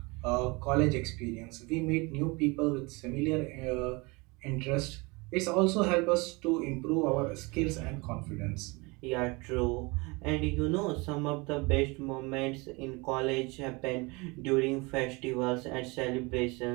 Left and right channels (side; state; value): left; quieter; 26.6 dB